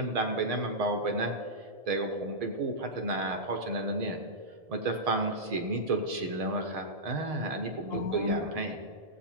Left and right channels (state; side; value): late; left; 1.7 ms